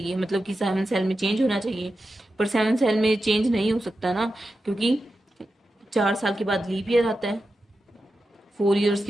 मतलब कि 7 सेल में चेंज होना चाहिए। पर 7 सेल में चेंज नहीं हो सकता ना, क्योंकि 4 साल के बाद लीप ईयर आता है, 4 ईयर्स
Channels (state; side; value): normal; both; correlation 0.91